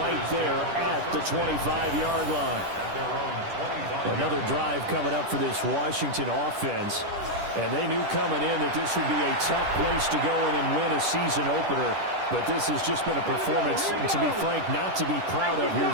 there at the 25-yard line. Another drive coming up for this Washington offense. And they knew coming in that this would be a tough place to go in and win a season opener. But this has just been a performance, to be frank, not to be proud of here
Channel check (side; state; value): left; late; 10 ms